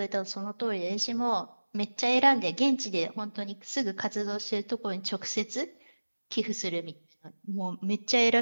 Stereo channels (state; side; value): inverted; both; correlation -1.00